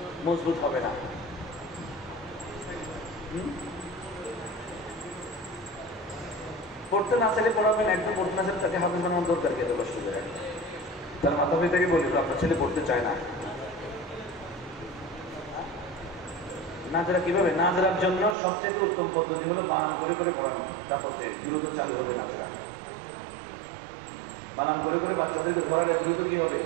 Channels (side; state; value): left; drops out; at 18.4 s